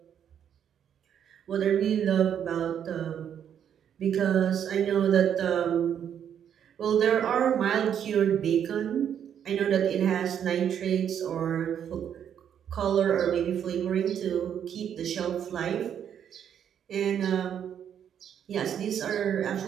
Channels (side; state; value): left; quieter; 8.9 dB